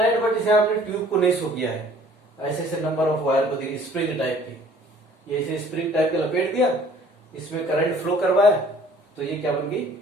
बट इसे आपने ट्यूब को नहीं शो किया है, ऐसे ऐसे नंबर ऑफ वायर को देखिए, स्प्रिंग टाइप की, ये ऐसे स्प्रिंग टाइप का लपेट दिया, इसमें करंट फ्लो करवाया, तो ये क्या बन गई,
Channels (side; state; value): both; normal; correlation 0.54